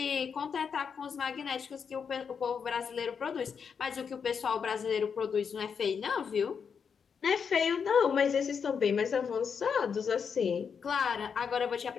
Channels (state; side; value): quieter; right; 6.5 dB